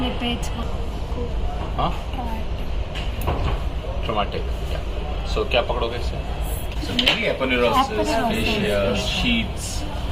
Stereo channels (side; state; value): both; identical; correlation 1.00